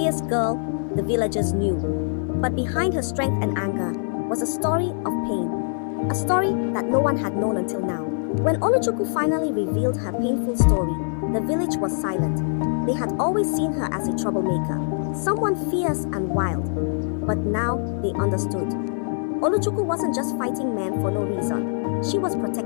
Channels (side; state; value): right; silent; 59 dB below the other